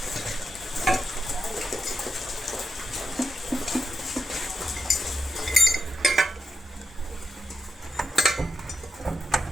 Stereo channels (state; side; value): normal; both; correlation 0.86